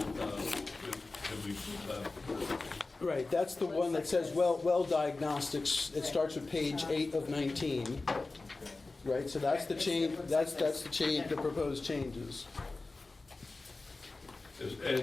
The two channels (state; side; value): quieter; right; 3.5 dB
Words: that we Right, that's the one that says well diagnostics. It starts with page 8 of 19. Right, so that's the change, that's the change, the proposed changes.